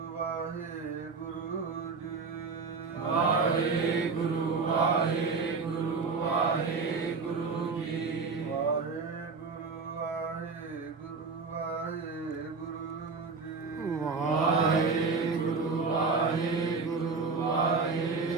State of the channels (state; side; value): quieter; left; 4.6 dB